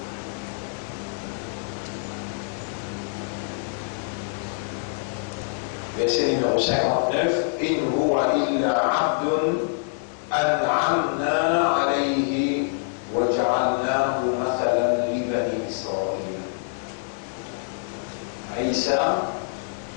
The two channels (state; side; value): silent; right; digital silence